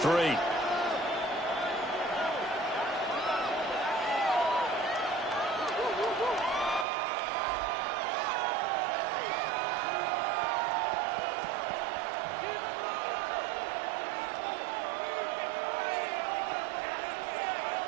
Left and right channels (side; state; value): left; drops out; at 6.9 s